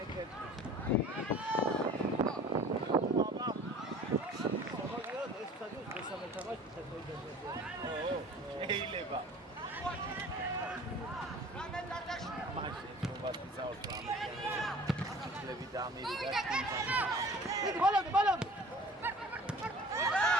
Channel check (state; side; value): normal; both; correlation 0.45